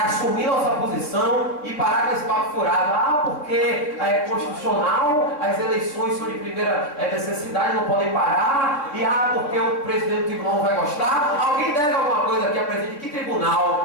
Assumir nossa posição e parar com esse papo furado. Porque é constitucional, as eleições são de primeira necessidade, não podem parar. E porque o presidente do tribunal não vai gostar. Alguém deve alguma coisa aqui a presidente de que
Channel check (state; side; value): late; right; 3.5 ms